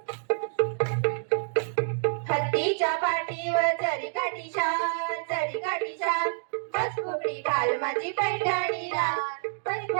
हत्तीच्या पाठीवर जरी काठी शान. जरी काठी शान. बस फुगडी घाल माझी पैठणी लाल.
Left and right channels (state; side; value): silent; left; digital silence